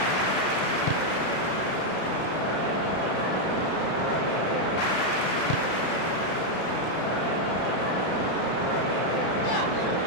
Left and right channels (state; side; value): late; right; 32 ms